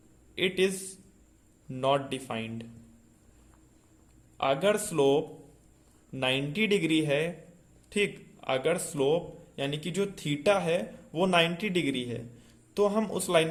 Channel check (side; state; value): both; identical; correlation 1.00